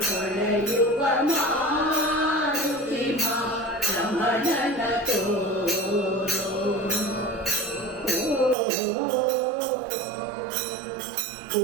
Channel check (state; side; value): drops out; left; at 8.6 s